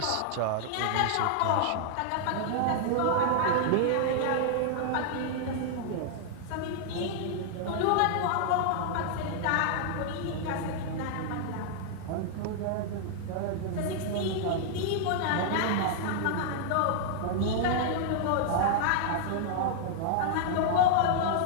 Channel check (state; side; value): different; both; correlation -0.01